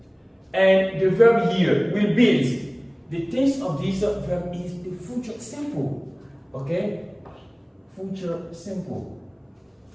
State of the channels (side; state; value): both; identical; correlation 1.00